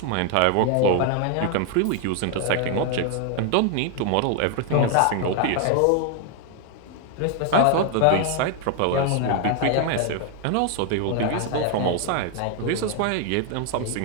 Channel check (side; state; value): both; different; correlation 0.00